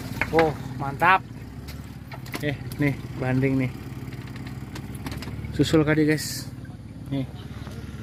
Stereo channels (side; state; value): both; identical; correlation 1.00